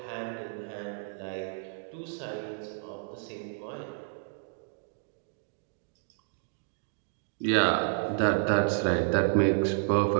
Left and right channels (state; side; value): silent; left; digital silence